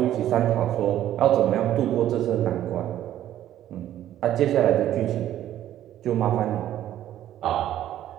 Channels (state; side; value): quieter; left; 12.2 dB